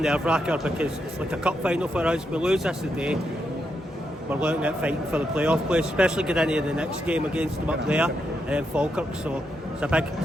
because it's like a cup final for us. We lose this today, we're looking at fighting for the playoff place, especially getting into the next game against them up there and then Falkirk. So it's a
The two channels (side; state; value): both; normal; correlation 0.82